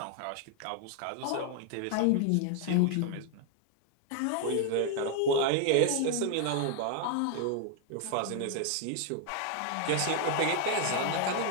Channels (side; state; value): both; different; correlation 0.00